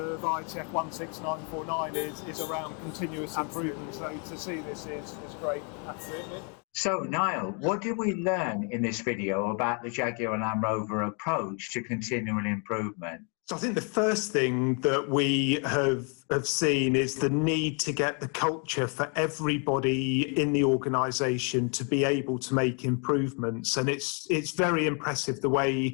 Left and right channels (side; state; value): right; quieter; 37.9 dB